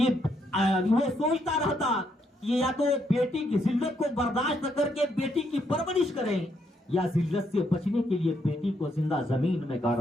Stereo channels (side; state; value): both; normal; correlation 0.75